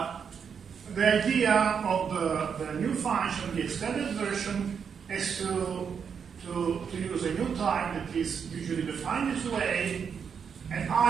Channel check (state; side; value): quieter; left; 6.8 dB